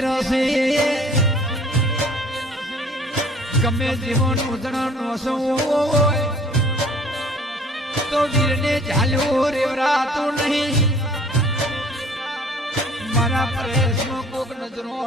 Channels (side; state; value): both; normal; correlation 0.53